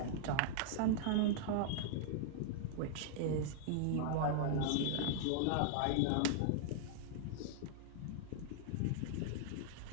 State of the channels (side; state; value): both; different; correlation -0.01